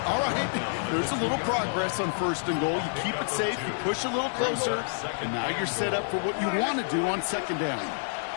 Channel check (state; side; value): silent; right; digital silence